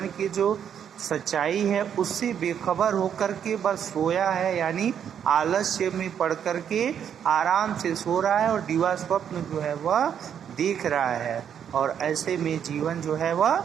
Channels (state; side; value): quieter; left; 8.6 dB